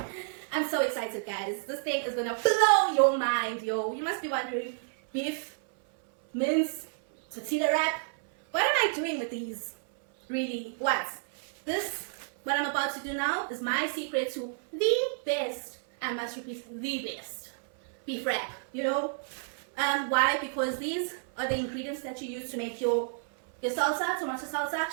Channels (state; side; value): silent; left; 58 dB below the other